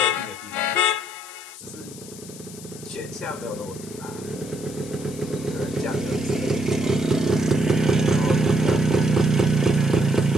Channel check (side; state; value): left; noise; hiss, 16 dB below the sound